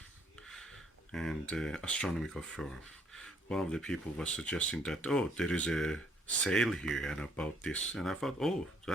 and astronomical forum. One of the people was suggesting that, oh, there is a sale here and about this, and I thought, oh,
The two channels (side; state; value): both; normal; correlation 0.67